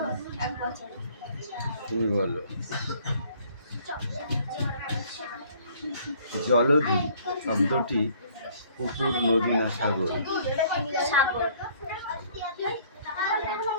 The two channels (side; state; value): both; inverted; correlation -0.58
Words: তুমি বলো জলধি শব্দটি পুকুর, নদী না সাগর? সাগর।